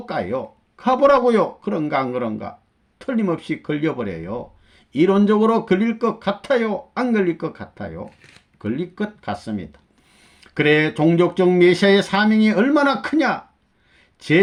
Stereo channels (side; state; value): both; identical; correlation 1.00